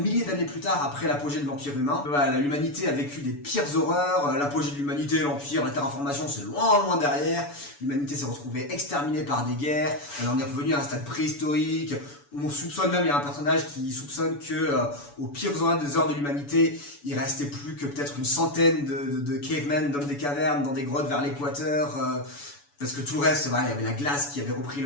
milliers d'années plus tard, après l'apogée de l'Empire humain. L'humanité a vécu des pires horreurs, l'apogée de l'humanité, l'Empire, la terraformation, c'est loin derrière. L'humanité s'est retrouvée exterminée par des guerres, elle en est revenue à un stade préhistorique. On soupçonne même, il y a un personnage qui soupçonne que aux pires des heures de l'humanité, il restait plus que peut-être une centaine de cavemen, d'hommes des cavernes, dans des grottes vers l'équateur, parce que tout le reste, il y avait la glace qui avait repris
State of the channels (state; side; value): late; right; 7.0 ms